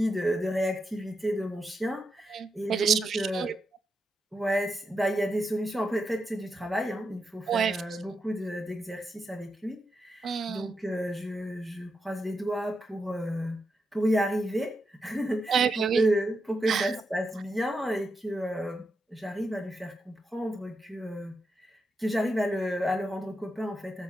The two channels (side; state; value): both; normal; correlation 0.85